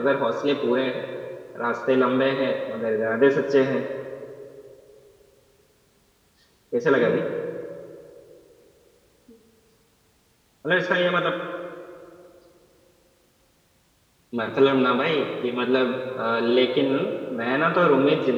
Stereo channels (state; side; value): identical; both; correlation 1.00